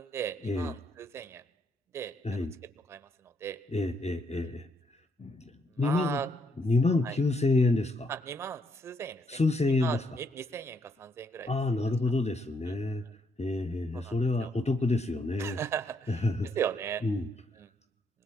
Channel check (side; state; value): both; normal; correlation 0.74